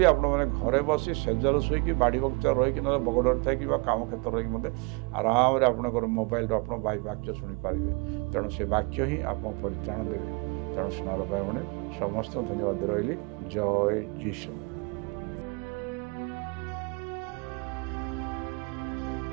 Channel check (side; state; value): left; quieter; 31.0 dB